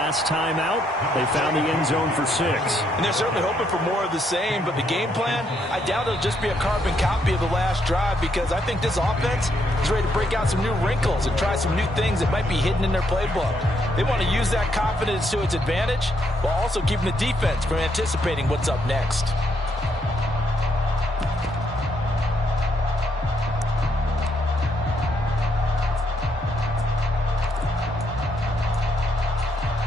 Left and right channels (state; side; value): normal; both; correlation 0.75